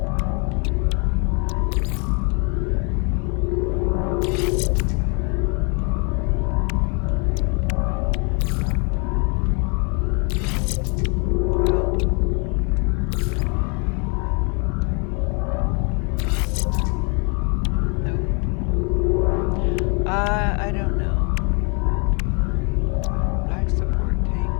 I don't know. Life support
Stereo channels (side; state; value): right; quieter; 35.1 dB